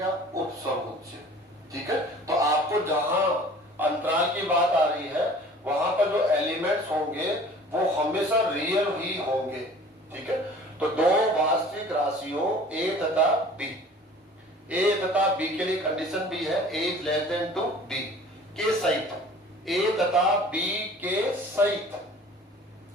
उप समुच्चय। ठीक है, तो आपको जहां अंतराल की बात आ रही है वहां पर जो एलिमेंट्स होंगे वो हमेशा रियल ही होंगे। ठीक है, तो दो वास्तविक राशियों ए तथा बी, ए तथा बी के लिए कंडीशन भी है, A is less than to B के सहित, ए तथा बी के सहित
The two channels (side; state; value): both; normal; correlation 0.47